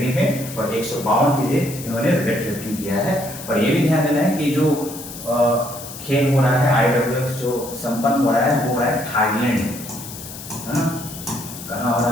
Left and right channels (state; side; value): noise; left; hiss, 12 dB below the sound